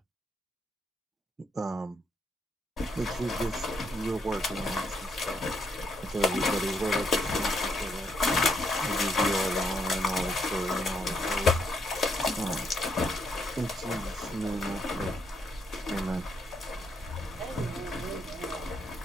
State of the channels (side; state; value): both; normal; correlation 0.74